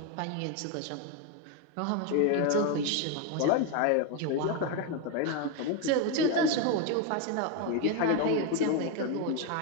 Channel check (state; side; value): different; both; correlation 0.02